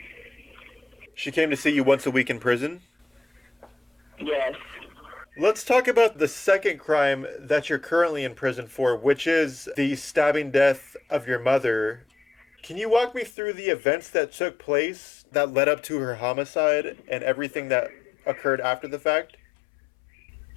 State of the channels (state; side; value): drops out; right; at 13.3 s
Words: She came to see you once a week in prison? Yes. Let's talk about the second crime that you're currently in prison for, which is the stabbing death of your mother. Can you walk me through the events that took place that led up to her homicide and everything that occurred after the fact?